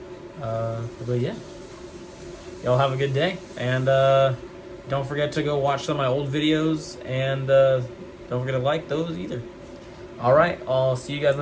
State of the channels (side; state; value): both; identical; correlation 1.00